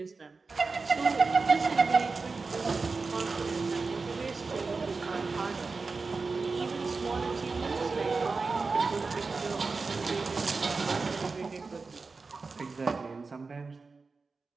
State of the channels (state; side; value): quieter; left; 4.2 dB